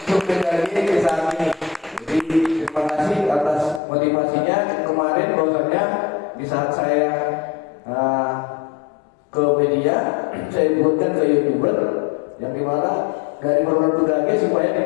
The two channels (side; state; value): right; drops out; at 3.8 s